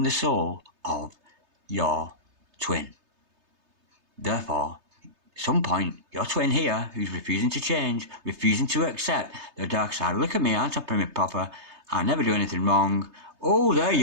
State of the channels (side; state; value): left; late; 3.3 ms